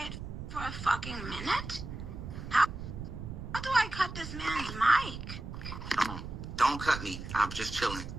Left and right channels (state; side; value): noise; right; rumble, 8 dB below the sound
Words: for a fucking minute? How do I cut this man's mic? Don't cut me. I'm just chilling.